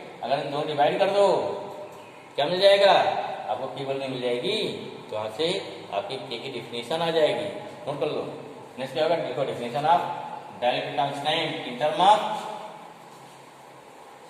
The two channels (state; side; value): identical; both; correlation 1.00